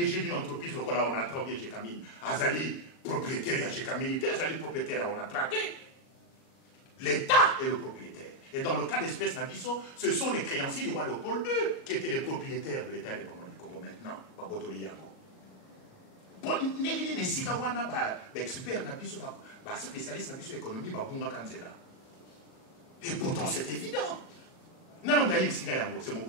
d'une entreprise, le on a traité Jekamine, Azali, propriétaire à Jekamine, Azali, propriétaire on a traité. L'État est le propriétaire. Et dans le cas d'espèce Nabiso, ce sont les créanciers du roi Léopold II qui étaient les propriétaires de l'État indépendant du Congo maintenant. Babotoli Yango. Negini Nesika Wana, expert Nabiso, spécialiste Nabiso économie, Babunga Kanzela. Et pourtant c'est évident. Non, c'est mon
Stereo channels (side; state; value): right; late; 38 ms